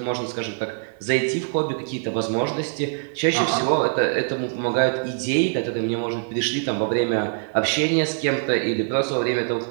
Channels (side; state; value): left; silent; 63 dB below the other